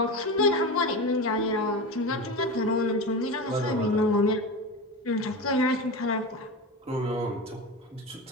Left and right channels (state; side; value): normal; both; correlation 0.24